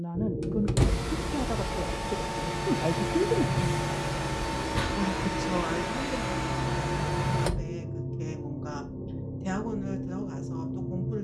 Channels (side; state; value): both; identical; correlation 1.00